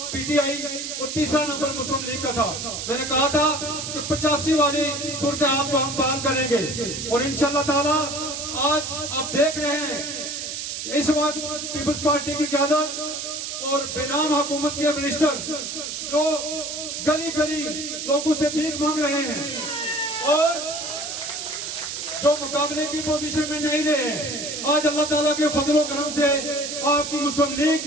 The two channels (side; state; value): right; noise; hiss, 5 dB below the sound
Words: पीटीआई और तीसरा नंबर मुस्लिम लीग का था, मैंने कहा था कि 85 वाली सूरत हाल को हम बहाल करेंगे। और इंशाअल्लाह ताला आज आप देख रहे हैं कि इस वक्त पीपल्स पार्टी की क़यादत और बेनाम हुकूमत के मिनिस्टर जो गली गली लोगों से भीख मांग रहे हैं और जो मुकाबले की पोजीशन में नहीं रहे, आज अल्लाह ताला के फजल व करम से आपकी मुस्लिम लीग